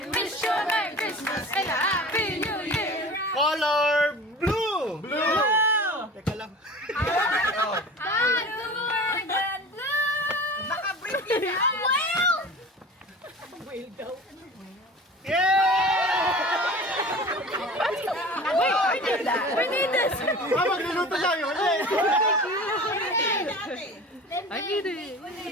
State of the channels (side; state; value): both; normal; correlation 0.38